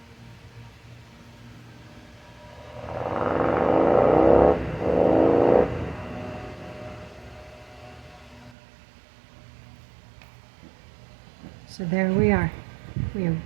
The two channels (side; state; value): left; drops out; at 8.6 s